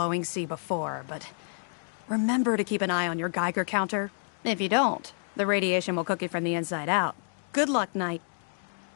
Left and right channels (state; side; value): silent; right; 59 dB below the other